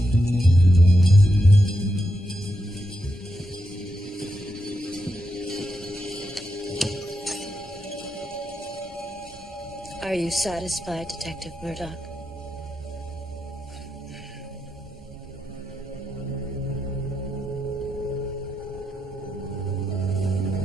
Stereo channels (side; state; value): both; normal; correlation 0.85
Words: Are you satisfied, Detective Murdoch?